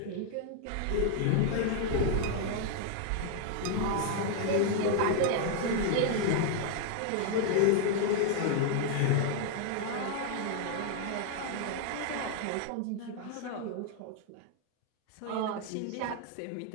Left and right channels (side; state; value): both; different; correlation 0.00